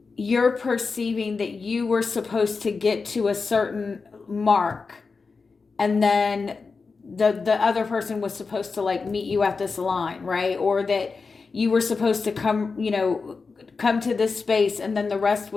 you're perceiving that you were supposed to get to a certain mark, and then the other person was supposed to like meet you at this line, right? Or that you were supposed to come to this space, and then the rest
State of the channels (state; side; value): quieter; right; 4.6 dB